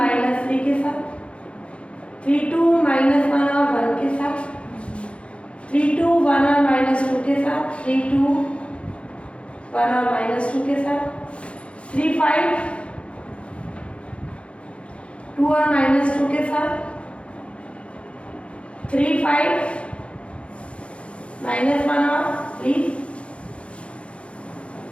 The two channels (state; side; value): late; right; 0.060 ms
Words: के साथ, 3 2 -1 और 1 के साथ, 3 2 1 और -2 के साथ, 3 2 1 और -2 के साथ, 3 5 2 और -2 के साथ, 3 5 -1 और 3